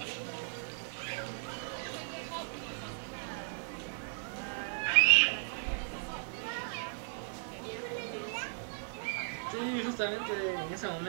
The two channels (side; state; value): left; silent; 54 dB below the other